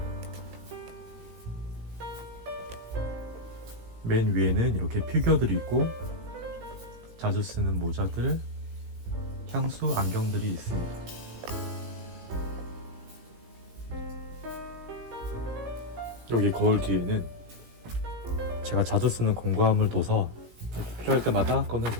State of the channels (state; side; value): late; left; 17 ms